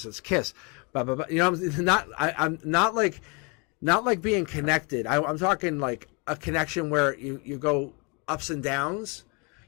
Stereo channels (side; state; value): right; quieter; 31.6 dB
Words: Let's kiss. Blah, blah, blah. You know, I'm not like being connected. I'm talking like a connection where you go ups and downs.